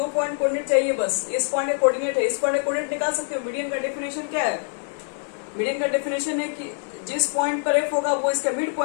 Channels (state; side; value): silent; right; 62 dB below the other